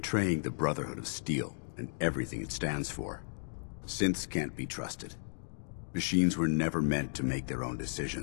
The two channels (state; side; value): silent; right; digital silence